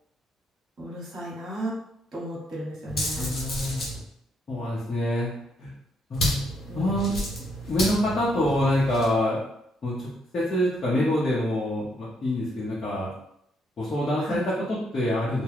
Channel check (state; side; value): normal; both; correlation 0.74